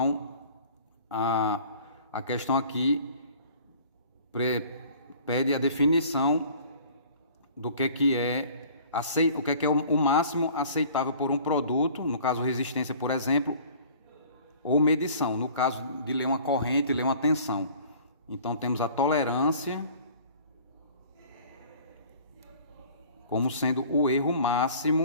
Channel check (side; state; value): both; inverted; correlation -0.49